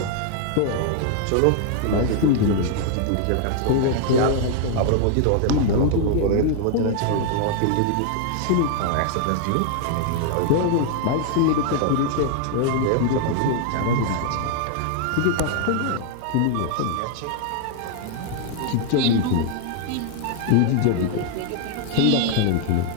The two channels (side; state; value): both; different; correlation 0.00